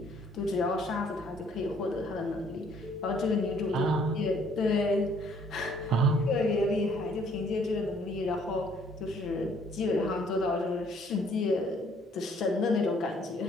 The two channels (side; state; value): both; normal; correlation 0.62